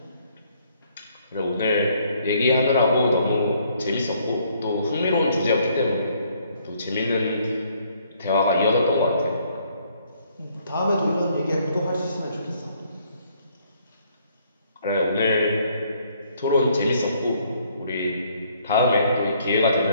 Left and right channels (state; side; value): inverted; both; correlation -0.66